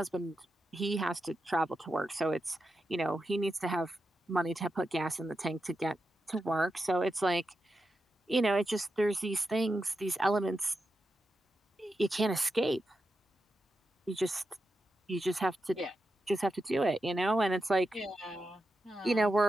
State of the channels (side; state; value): both; normal; correlation 0.89